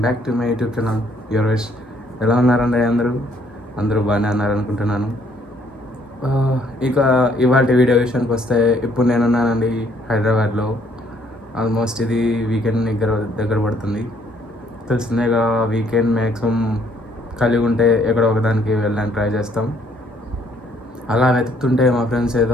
back to my YouTube channel your wish. ఎలా ఉన్నారండి అందరూ బాగానే ఉన్నారనుకుంటున్నాను. ఇక ఇవాళ వీడియో విషయానికి వస్తే, ఇప్పుడు నేనున్నానండి హైదరాబాద్లో. ఆల్మోస్ట్ ఇది వీకెండ్ దగ్గర పడుతుంది. తెలిసిందేగా, వీకెండ్ మ్యాక్సిమం కలిగి ఉంటే ఎక్కడో ఒకదానికి వెళ్ళడానికి ట్రై చేస్తాం. అలా వెతుకుతుంటే మా ఫ్రెండ్స్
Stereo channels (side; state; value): both; normal; correlation 0.65